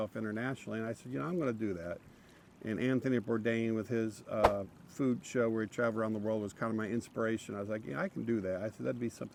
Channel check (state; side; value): identical; both; correlation 1.00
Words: internationally. And I said, I'm going to do that. And Anthony Bourdain with his food show where he traveled around the world was kind of my inspiration. I was like, I can do that. I said, that'd be